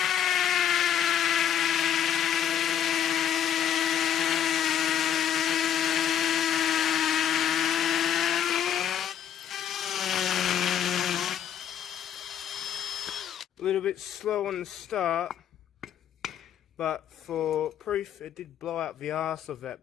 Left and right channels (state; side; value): quieter; right; 9.5 dB